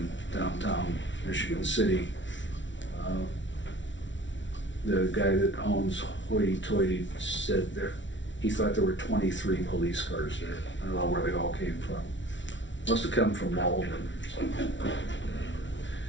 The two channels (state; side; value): late; right; 0.55 ms